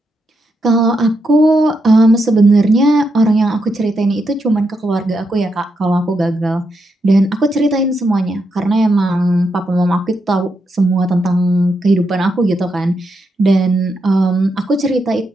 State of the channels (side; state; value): both; normal; correlation 0.82